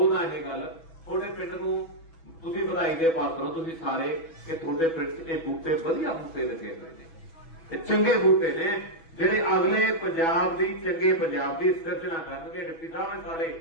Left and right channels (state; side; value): late; right; 6.1 ms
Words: ਇਹ ਗੱਲ ਤੁਹਾਡੇ ਪਿੰਡ ਨੂੰ ਤੁਸੀਂ ਵਧਾਈ ਦੇ ਪਾਤਰ ਹੋ ਤੁਸੀਂ ਸਾਰੇ ਕਿ ਤੁਹਾਡੇ ਪਿੰਡ 'ਚ ਇਹ ਬੂਟੇ ਵਧੀਆ ਬੂਟੇ ਲੱਗੇ ਹੋਏ ਨੇ ਇਹ ਚੰਗੇ ਬੂਟੇ ਨੇ ਜਿਹੜੇ ਅਗਲੇ ਪੰਜਾਬ ਦੀ ਚੰਗੇ ਪੰਜਾਬ ਦੀ ਸਿਰਜਣਾ ਕਰਨਗੇ। ਡਿਪਟੀ ਸਾਹਿਬ ਸਾਰੇ